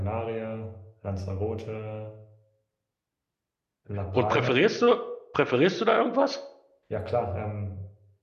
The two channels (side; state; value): both; identical; correlation 1.00